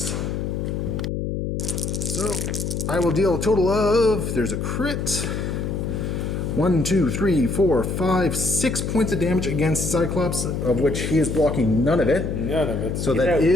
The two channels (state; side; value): noise; left; hum, 2 dB below the sound